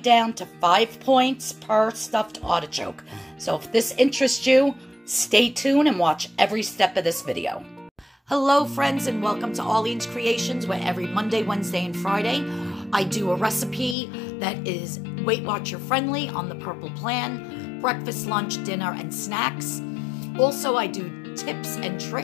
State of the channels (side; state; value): right; drops out; at 14.0 s